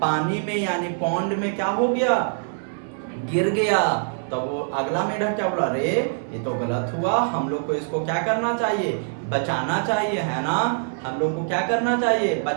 में यानी पॉन्ड में क्या हो गया? गिर गया। तो वो अगला मेढक क्या बोला? अरे ये तो गलत हुआ, हम लोग को इसको क्या करना चाहिए? बचाना चाहिए, है ना। हम लोग को क्या करना चाहिए?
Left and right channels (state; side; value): silent; left; 59 dB below the other